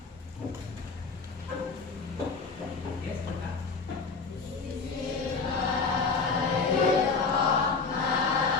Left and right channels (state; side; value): quieter; right; 4.6 dB